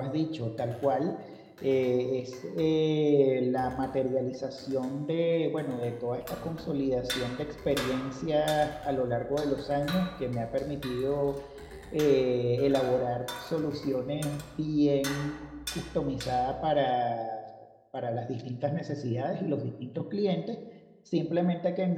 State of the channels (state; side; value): identical; both; correlation 1.00